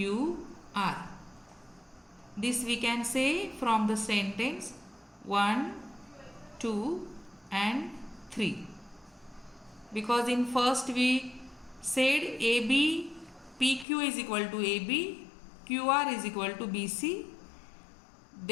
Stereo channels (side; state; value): right; drops out; at 13.9 s